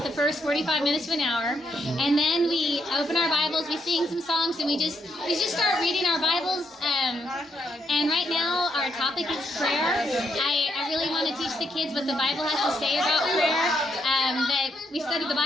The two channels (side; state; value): both; normal; correlation 0.77